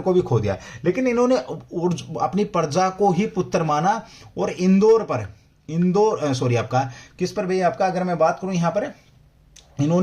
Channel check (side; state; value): both; identical; correlation 1.00